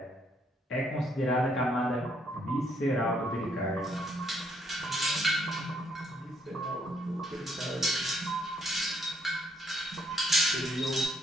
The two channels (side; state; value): both; normal; correlation 0.70